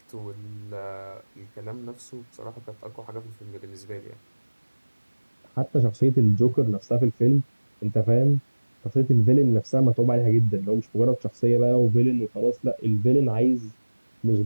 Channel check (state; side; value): inverted; both; correlation -1.00